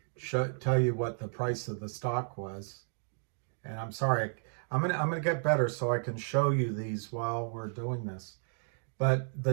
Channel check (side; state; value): left; silent; digital silence